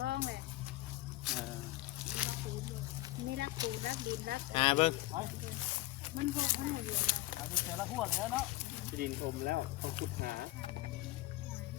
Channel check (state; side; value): quieter; right; 18.5 dB